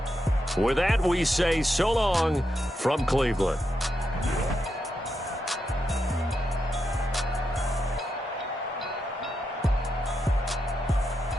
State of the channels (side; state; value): both; normal; correlation 0.85